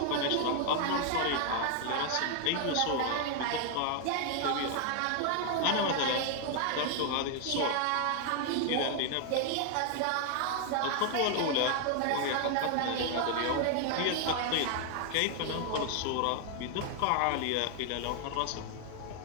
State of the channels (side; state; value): both; different; correlation 0.00